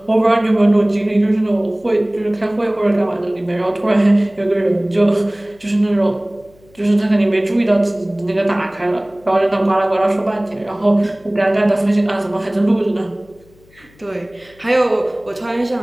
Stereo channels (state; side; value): noise; left; hum, 29 dB below the sound